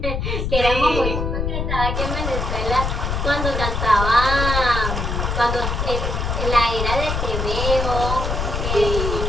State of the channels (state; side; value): noise; left; rumble, 1 dB below the sound